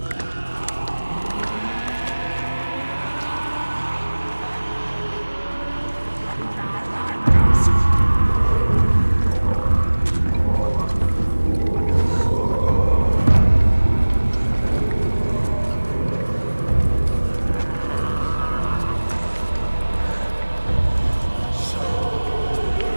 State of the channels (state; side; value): inverted; both; correlation -1.00